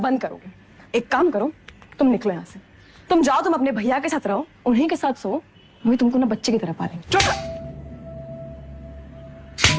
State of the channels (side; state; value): both; identical; correlation 1.00